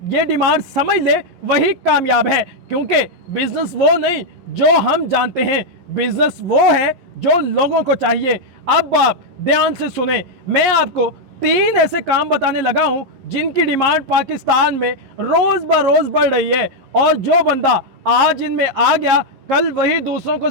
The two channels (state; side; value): late; left; 11 ms